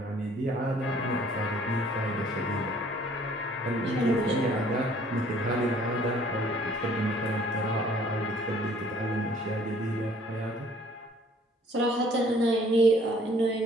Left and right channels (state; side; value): normal; both; correlation 0.57